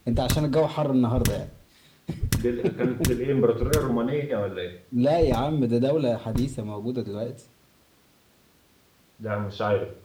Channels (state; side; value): identical; both; correlation 1.00